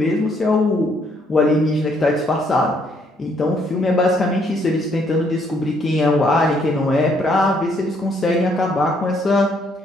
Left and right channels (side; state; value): both; normal; correlation 0.69